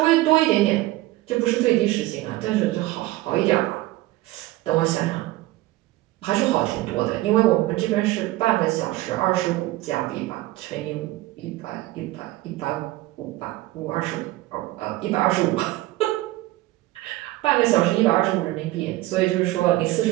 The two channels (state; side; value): quieter; left; 17.8 dB